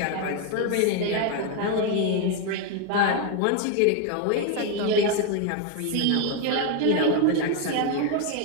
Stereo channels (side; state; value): both; different; correlation 0.01